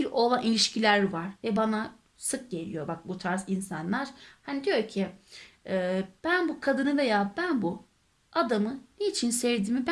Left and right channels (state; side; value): identical; both; correlation 1.00